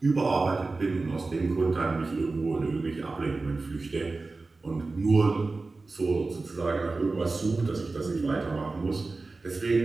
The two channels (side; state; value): left; quieter; 3.6 dB